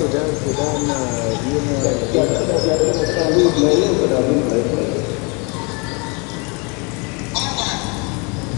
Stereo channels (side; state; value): right; quieter; 31.5 dB